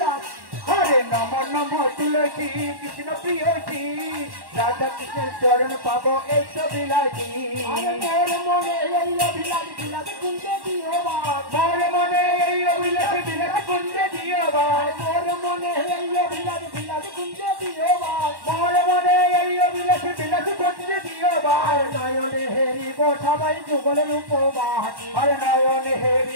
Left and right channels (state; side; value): late; left; 1.1 ms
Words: হরে নম নম তুলসী কৃষ্ণ প্রিয়সী রাধা কৃষ্ণের চরণ পাবো এই অভিলাষী মোর মনে এই অভিলাষ বিলাস কুঞ্জে দিও মোর মনে এই অভিলাষ বিলাস কুঞ্জে দিও মোর মনে এই অভিলাষ বিলাস কুঞ্জে দিও মোর মনে এই অভিলাষ বিলাস কুঞ্জে দিও নয়নে হেরিব সবাই যুগলের উপবাস আরে নয়নে